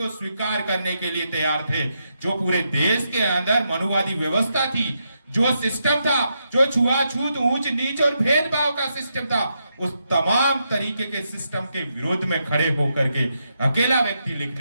स्वीकार करने के लिए तैयार थे। जो पूरे देश के अंदर मनुवादी व्यवस्था थी, जो सिस्टम था, जो छुआछूत, ऊंच नीच और भेदभाव का सिस्टम था, उस तमाम तरीके के सिस्टम के विरोध में खड़े होकर के अकेला व्यक्ति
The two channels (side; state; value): both; inverted; correlation -0.82